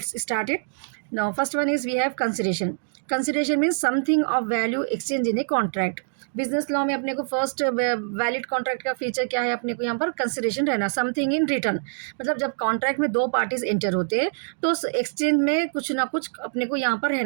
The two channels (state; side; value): silent; left; digital silence